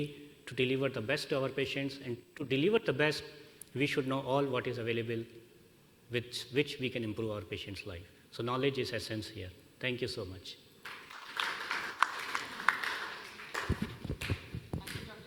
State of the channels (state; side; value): identical; both; correlation 1.00